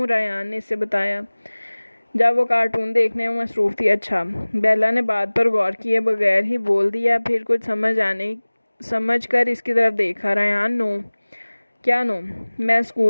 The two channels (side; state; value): both; inverted; correlation -1.00